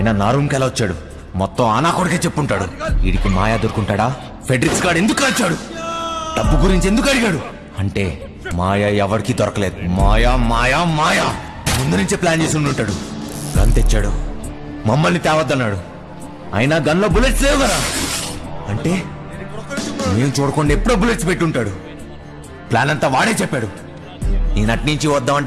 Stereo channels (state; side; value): identical; both; correlation 1.00